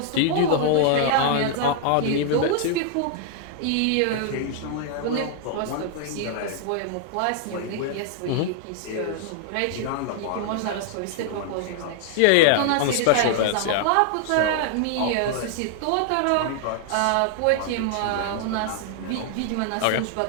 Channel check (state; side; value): different; both; correlation 0.00